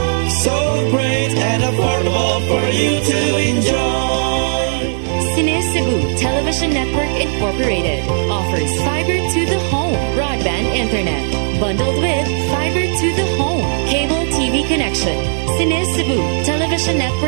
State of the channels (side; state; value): left; silent; digital silence